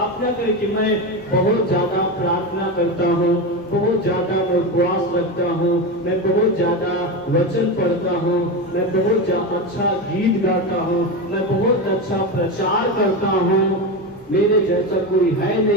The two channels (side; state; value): both; normal; correlation 0.18